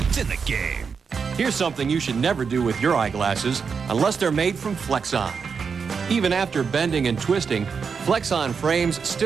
It's in the game. Here's something you should never do with your eyeglasses unless they're made from Flexon. Even after bending and twisting, Flexon frames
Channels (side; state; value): left; quieter; 5.8 dB